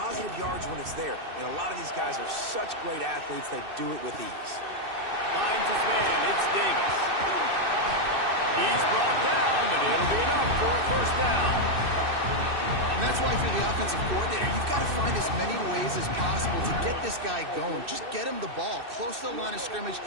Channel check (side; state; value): left; late; 2.6 ms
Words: yards when it's there. And a lot of these guys are such great athletes, they do it with ease. Finds his man. It's Davis. He's brought down, but it'll be enough for a first down. And that's why, if you're the offensive coordinator, you've got to find as many ways as possible to get this guy going. Just get him the ball close to the line of scrimmage.